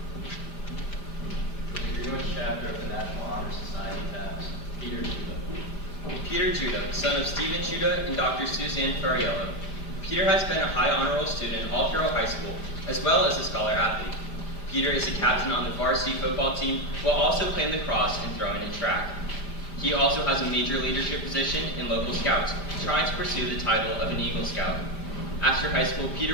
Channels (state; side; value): late; right; 5.0 ms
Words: Chapter of the National Honor Society tabs Peter Judah. Peter Judah, son of Stephen Judah and Dr. Suzanne Ferriello. Peter has been a high honor roll student all throughout high school, as well as a scholar athlete. Peter is a captain on the varsity football team, while also playing lacrosse and throwing and track. He also has a major leadership position in local scouts, trying to pursue the title of an Eagle Scout. After high school,